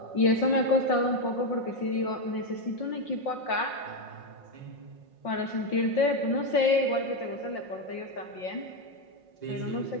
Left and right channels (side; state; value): right; late; 5.6 ms